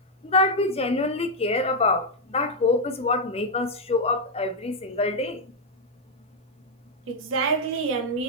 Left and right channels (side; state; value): both; normal; correlation 0.00